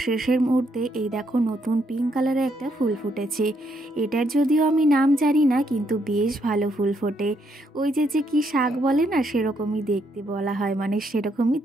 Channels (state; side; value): normal; both; correlation 0.74